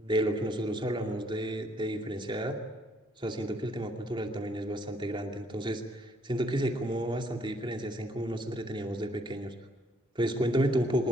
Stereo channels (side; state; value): both; normal; correlation 0.67